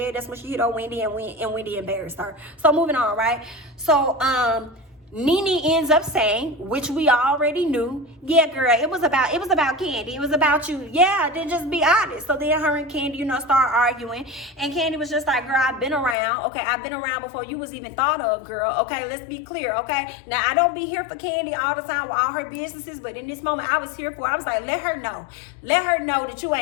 that's when she hit on Wendy, and Wendy embarrassed her. So moving on, right? So Nene ends up saying, which we already knew, yeah, girl, it was about Kandi. It was about you. Yeah, then just be honest. So then her and Kandi, start arguing. And Kandi was just like, girl, I've been around. Okay, I've been around before you was even thought of, girl. Okay, let's be clear, okay? Now, I don't be here for Kandi all the time with all her businesses, but in this moment, I was here for, I was like, let her know. Let her know that you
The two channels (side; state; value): right; drops out; at 16.2 s